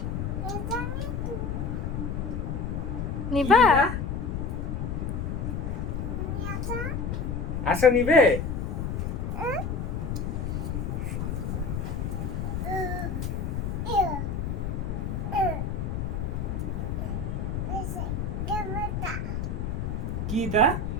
নিবা? আসো নিবে? কি তা?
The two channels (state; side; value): noise; left; rumble, 1 dB below the sound